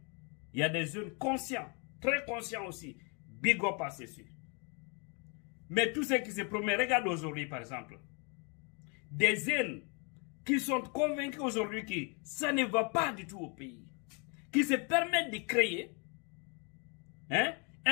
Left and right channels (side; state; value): right; quieter; 34.5 dB